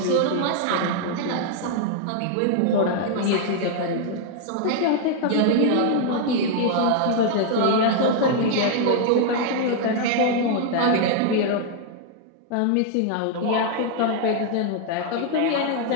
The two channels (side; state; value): both; different; correlation 0.00